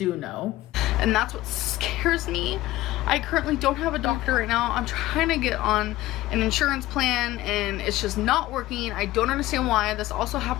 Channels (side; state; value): right; quieter; 16.8 dB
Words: know. And that's what scares me. I currently don't have a doctor right now. I'm trying to get on an insurance plan, and it's just not working. I don't understand why. This also